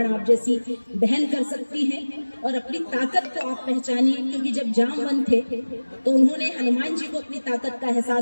आप जैसी बहन कर सकती हैं। और अपनी ताकत को आप पहचानिए, क्योंकि जब जामवंत थे तो उन्होंने हनुमान जी को अपनी ताकत का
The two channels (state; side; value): inverted; both; correlation -1.00